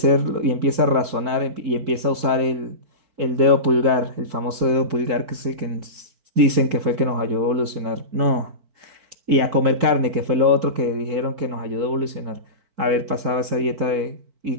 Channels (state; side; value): late; left; 4.5 ms